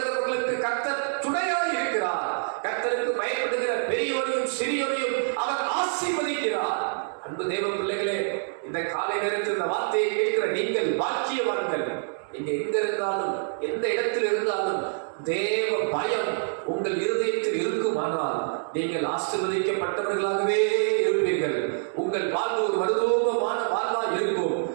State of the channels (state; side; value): silent; left; digital silence